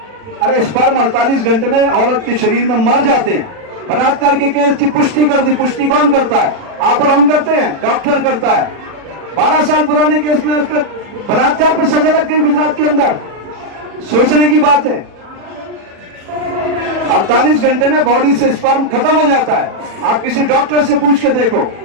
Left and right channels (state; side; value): late; left; 40 ms